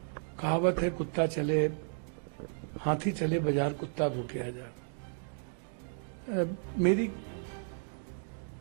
कहावत है, कुत्ता चले हाथी चले बाजार, कुत्ता भूखे आ जा। मेरी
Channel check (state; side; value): silent; left; digital silence